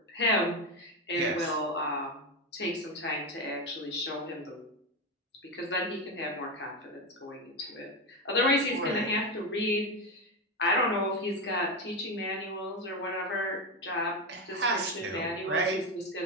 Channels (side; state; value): both; normal; correlation 0.13